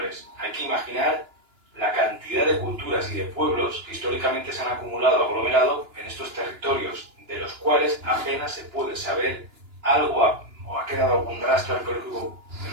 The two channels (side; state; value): left; late; 2.9 ms